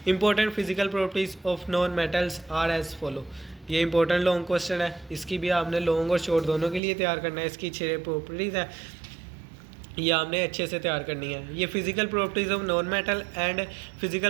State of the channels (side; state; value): left; drops out; at 6.8 s